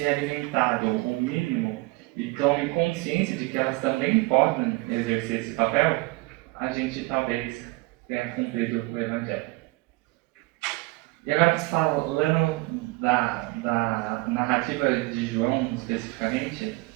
alimentado o mínimo e tomem consciência de que elas também podem exercer esse papel, a gente talvez tenha cumprido o Evangelho. E agora, falando da narrativa de João especificamente,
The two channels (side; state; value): left; quieter; 22.9 dB